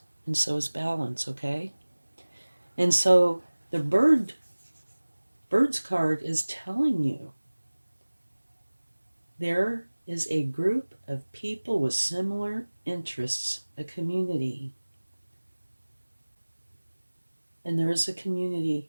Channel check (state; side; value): inverted; both; correlation -1.00